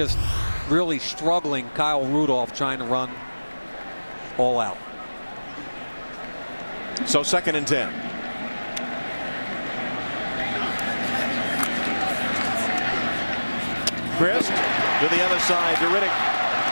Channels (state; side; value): inverted; both; correlation -1.00